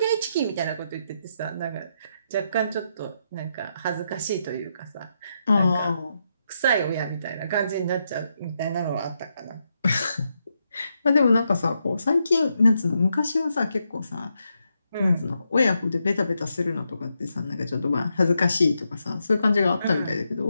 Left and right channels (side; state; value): both; inverted; correlation -0.82